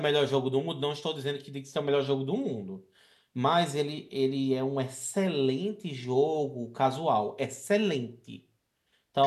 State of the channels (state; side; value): identical; both; correlation 1.00